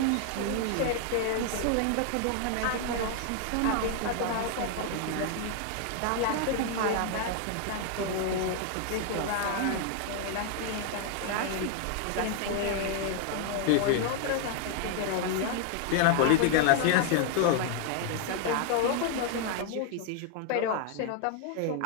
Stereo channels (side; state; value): both; different; correlation 0.00